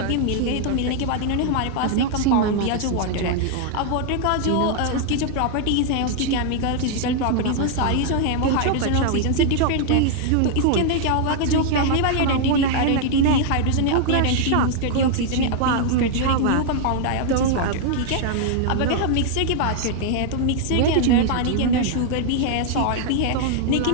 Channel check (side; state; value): both; different; correlation 0.00